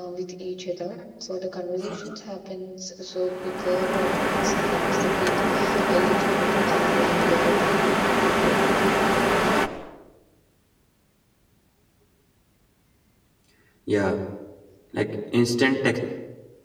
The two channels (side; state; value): both; identical; correlation 1.00